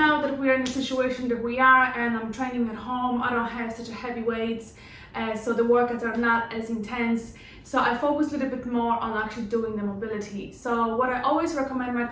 that we're in a situation that we are and I'm training at home, I don't have such a heavy weights, so the workouts are not as intense. So I focus a little bit more on actually doing the mobility. So what I always recommend my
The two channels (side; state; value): both; identical; correlation 1.00